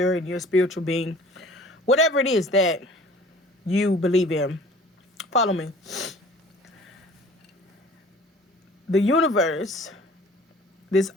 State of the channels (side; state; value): both; normal; correlation 0.48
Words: and you're a spiritual being, whatever it is that you believe in, follow me. The universe, this